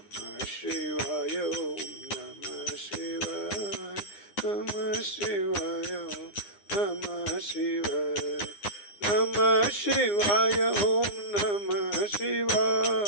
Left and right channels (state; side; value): late; right; 9.8 ms